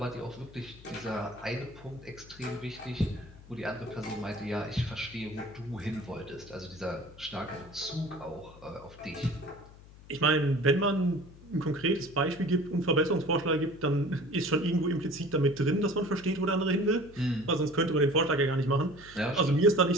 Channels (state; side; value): noise; left; hum, 20 dB below the sound